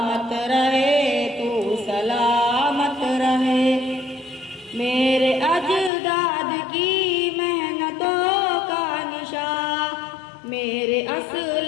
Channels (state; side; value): drops out; right; at 5.9 s